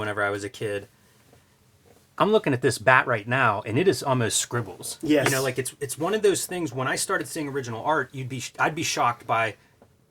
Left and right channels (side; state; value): both; identical; correlation 1.00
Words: I was a kid. I'm looking at this bat right now, and it is almost scribbles. Yes. Like it's one of those things. When I started seeing original art, I'd be shocked by